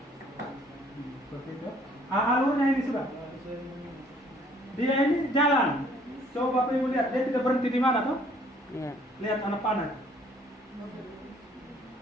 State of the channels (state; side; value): normal; both; correlation 0.60